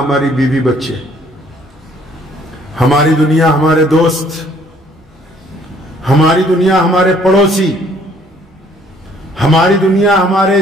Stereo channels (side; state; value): both; normal; correlation 0.61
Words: بیوی بچے، ہماری دنیا ہمارے دوست، ہماری دنیا ہمارے پڑوسی، ہماری دنیا ہمارے